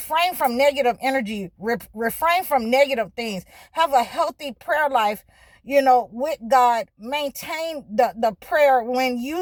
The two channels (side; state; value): both; identical; correlation 1.00